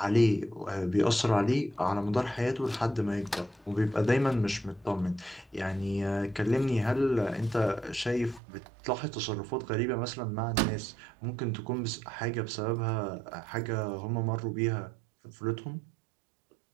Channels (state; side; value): drops out; left; at 8.4 s